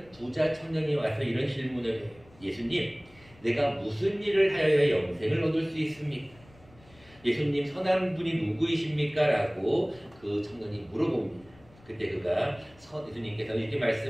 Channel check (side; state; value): left; noise; rumble, 26 dB below the sound